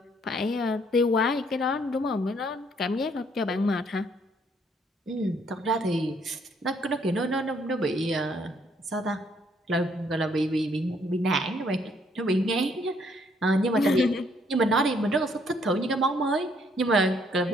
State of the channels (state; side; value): normal; both; correlation 0.68